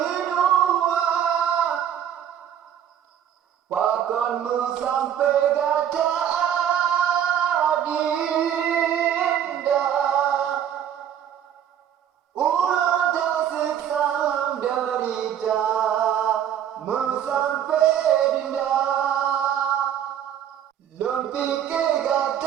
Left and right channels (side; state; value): left; quieter; 9.8 dB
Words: dua, pakonmu sampai gata adinda. Ulang tasik salam derita, mu sampai dinda. Lon pikir